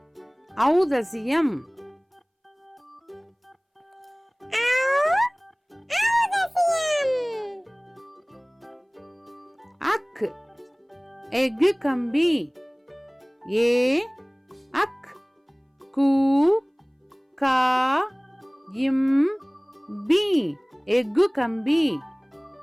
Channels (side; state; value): both; identical; correlation 1.00